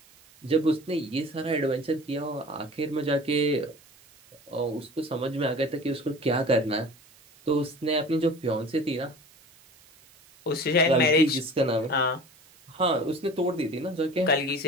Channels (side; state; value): right; noise; hiss, 27 dB below the sound